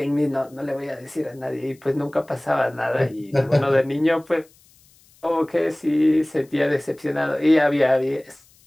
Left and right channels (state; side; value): noise; left; hiss, 30 dB below the sound